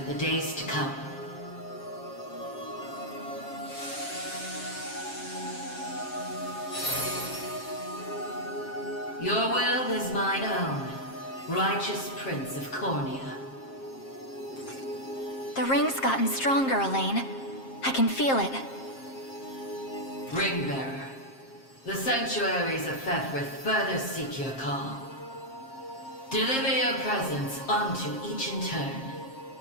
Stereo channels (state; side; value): late; right; 7.5 ms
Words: the days to come. Your will is mine own, righteous Prince of Cornea. The ring's gotten stronger, Elaine. I can feel it. Ringbearer, the sanctuaries of Fefrith further seek your call. Deliver your presence unto each in turn,